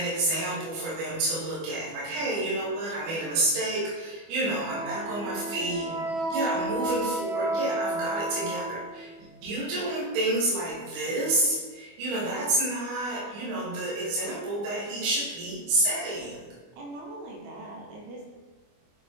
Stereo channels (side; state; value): left; late; 24 ms